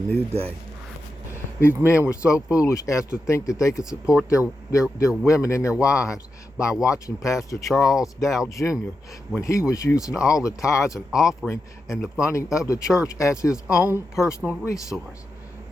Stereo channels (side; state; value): both; normal; correlation 0.88